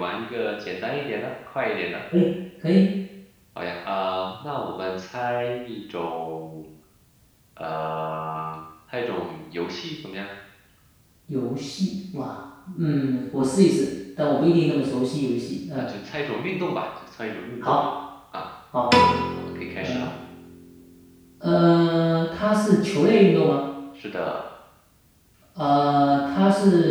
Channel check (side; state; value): both; identical; correlation 1.00